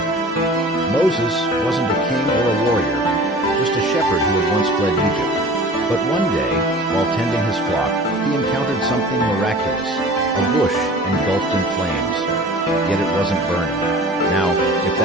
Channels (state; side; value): normal; both; correlation 0.42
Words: Moses wasn't a king or a warrior, just a shepherd who had once fled Egypt. But one day, while tending his flock, he encountered something miraculous, a bush engulfed in flames. Yet it wasn't burning. Now, if